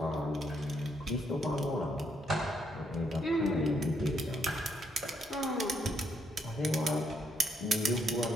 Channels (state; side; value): normal; both; correlation 0.74